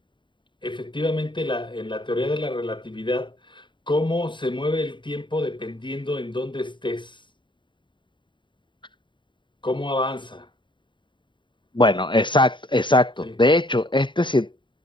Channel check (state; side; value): late; right; 0.23 ms